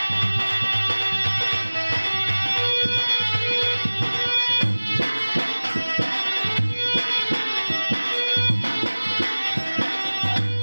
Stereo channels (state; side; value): inverted; both; correlation -1.00